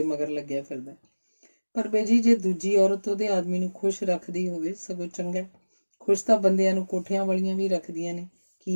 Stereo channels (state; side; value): inverted; both; correlation -1.00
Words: ਮਗਰ ਲੱਗਿਆ ਫਿਰਦਾ। ਪਰ ਬੇਜੀ ਜੇ ਦੂਜੀ ਔਰਤ ਉਹਦੇ ਆਦਮੀ ਨੂੰ ਖੁਸ਼ ਰੱਖਦੀ ਹੋਵੇ, ਸਗੋਂ ਚੰਗਾ। ਖੁਸ਼ ਤਾਂ ਬੰਦਿਆਂ ਨੂੰ ਕੋਠਿਆਂ ਵਾਲੀਆਂ ਵੀ ਰੱਖਦੀਆਂ ਨੇ।